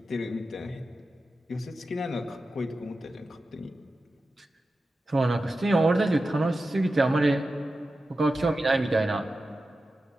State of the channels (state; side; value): normal; both; correlation 0.92